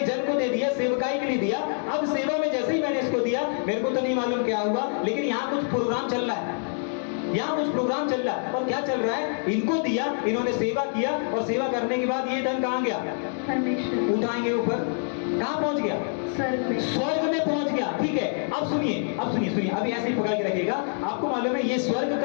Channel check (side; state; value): right; silent; 61 dB below the other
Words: जन को दे दिया, सेवकाई के लिए दिया। अब सेवा में जैसे ही मैंने इसको दिया, मेरे को तो नहीं मालूम क्या हुआ, लेकिन यहाँ कुछ प्रोग्राम चल रहा है, और क्या चल रहा है? इनको दिया, इन्होंने सेवा किया, और सेवा करने के बाद ये धन कहाँ गया? परमेश्वर उठाएंगे ऊपर, कहाँ पहुंच गया? स्वर्ग में पहुंच गया। ठीक है, अब सुनिए, अभी ऐसे ही पकड़ के रखिएगा। आपको मालूम है ये स्वर्ग